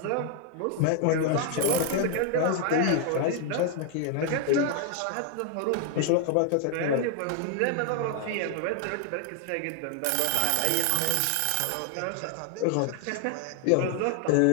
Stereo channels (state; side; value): different; both; correlation 0.00